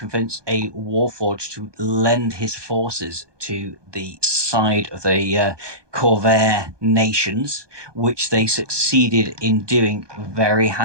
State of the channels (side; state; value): left; late; 1.2 ms